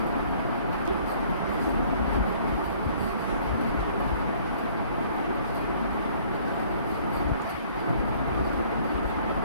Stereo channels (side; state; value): both; inverted; correlation -0.57